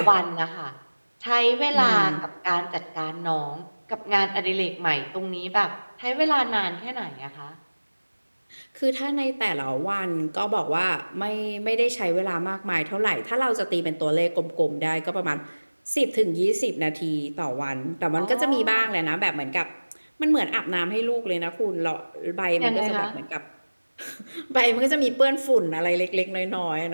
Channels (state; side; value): inverted; both; correlation -1.00